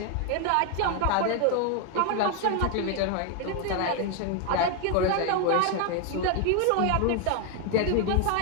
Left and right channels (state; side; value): different; both; correlation 0.01